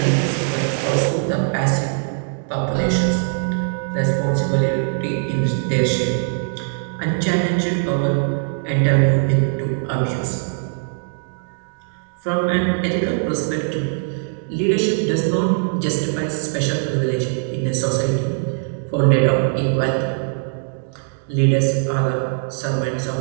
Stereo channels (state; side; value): silent; left; digital silence